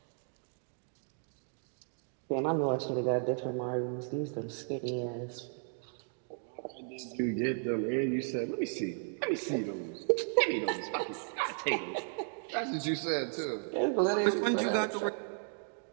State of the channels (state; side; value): silent; left; 55 dB below the other